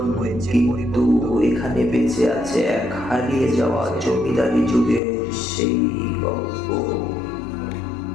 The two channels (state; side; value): drops out; right; at 5.0 s